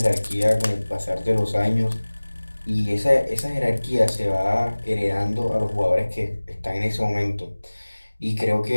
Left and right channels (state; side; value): inverted; both; correlation -1.00